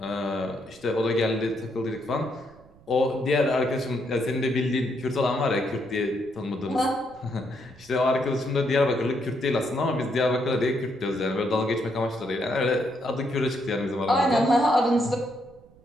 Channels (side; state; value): right; noise; rumble, 26 dB below the sound